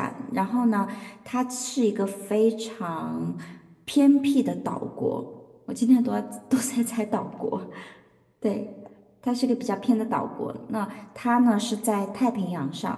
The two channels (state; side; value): identical; both; correlation 1.00